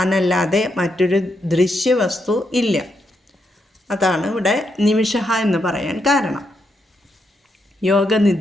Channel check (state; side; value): normal; both; correlation 0.81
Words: മറ്റൊരു ദൃശ്യവസ്തു ഇല്ല. അതാണ് ഇവിടെ നിമിഷ എന്ന് പറയാൻ കാരണം.